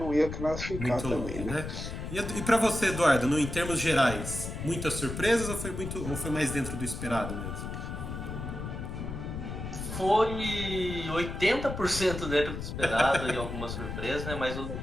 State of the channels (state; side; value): noise; left; rumble, 6 dB below the sound